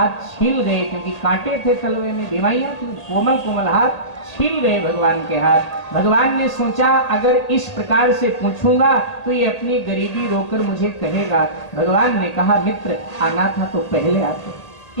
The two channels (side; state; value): right; late; 1.8 ms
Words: छील गए, क्योंकि कांटे थे तलवे में, बीमारियां थी। कोमल कोमल हाथ छील गए भगवान के हाथ। भगवान ने सोचा अगर इस प्रकार से पूछूंगा तो ये अपनी गरीबी रोकर मुझे कहेगा। भगवान ने कहा मित्र आना था तो पहले आते,